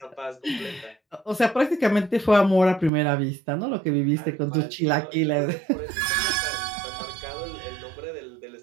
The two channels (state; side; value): drops out; left; at 2.9 s